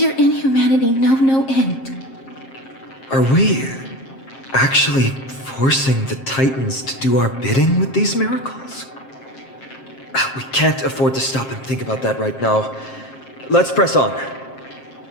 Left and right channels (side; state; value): right; late; 7.5 ms